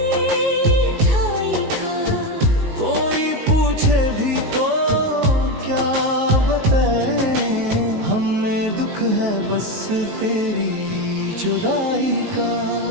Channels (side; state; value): left; late; 18 ms